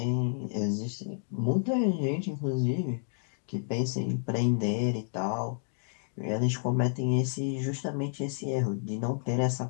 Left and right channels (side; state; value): right; silent; digital silence